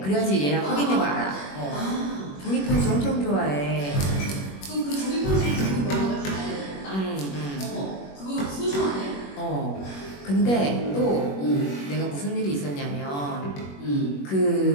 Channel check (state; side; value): late; right; 21 ms